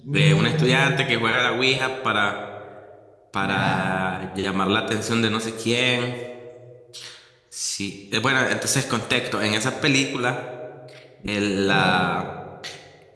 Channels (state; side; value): identical; both; correlation 1.00